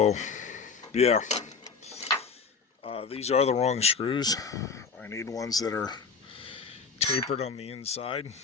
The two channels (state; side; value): quieter; right; 5.2 dB